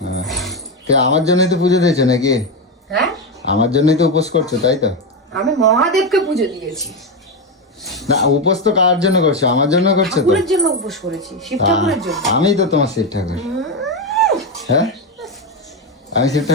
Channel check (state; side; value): normal; both; correlation 0.11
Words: হ্যাঁ, তো আমার জন্যই তো পুজো দিয়েছো নাকি? হ্যাঁ, আমার জন্যই তো উপোস করছো, তাই তো? আমি মহাদেবকে পুজো দিয়েছি। না, উপোস তো কার জন্য করছো? আমার জন্য করছো তো? ঠাকুরের জন্য উপোস করেছি, শিব ঠাকুরের জন্য। আমি তো তোমার শিব ঠাকুর। হ্যাঁ, আমি শিব